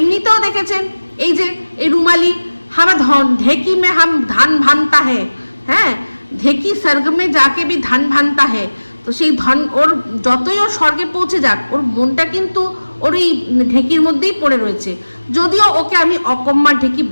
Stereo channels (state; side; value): inverted; both; correlation -1.00